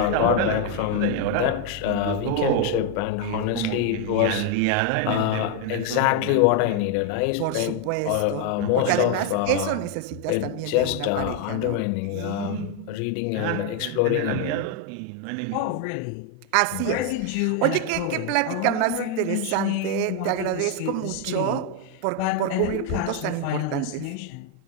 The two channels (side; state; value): both; different; correlation 0.01